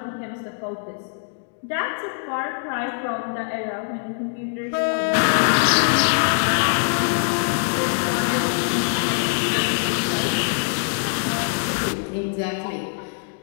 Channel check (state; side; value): silent; right; 62 dB below the other